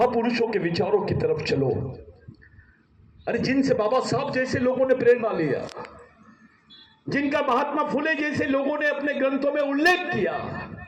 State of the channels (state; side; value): identical; both; correlation 1.00